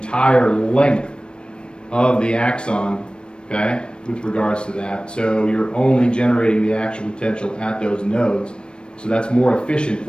length of the axon, okay, with regards to that. So you're only generating the actual potential at those nodes. So that's more efficient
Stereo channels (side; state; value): right; late; 0.055 ms